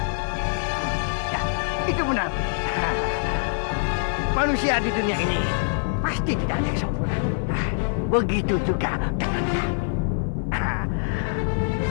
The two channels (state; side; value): silent; right; digital silence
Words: Ya, itu benar. Manusia di dunia ini pasti tidak ada yang sempurna. Begitu juga dengan kami.